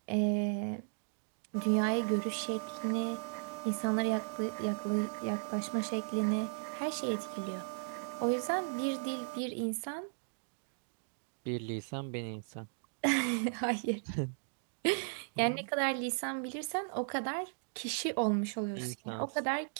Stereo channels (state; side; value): silent; left; digital silence